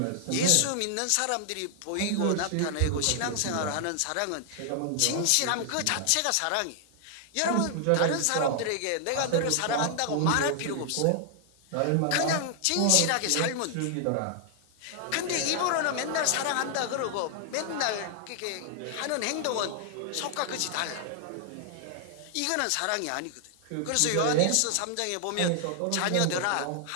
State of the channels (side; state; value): both; different; correlation 0.00